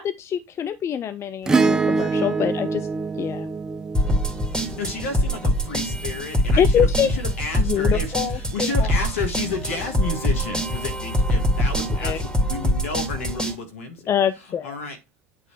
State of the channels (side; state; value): both; normal; correlation 0.53